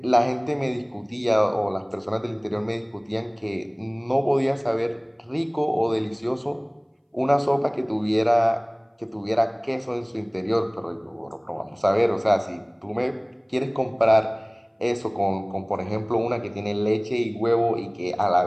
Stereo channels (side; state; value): both; identical; correlation 1.00